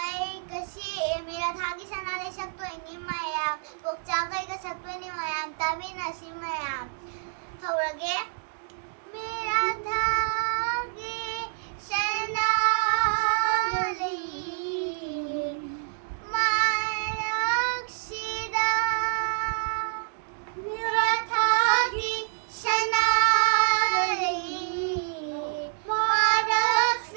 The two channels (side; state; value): left; silent; digital silence